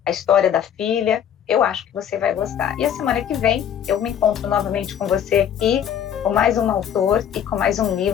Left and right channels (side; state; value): right; quieter; 9.2 dB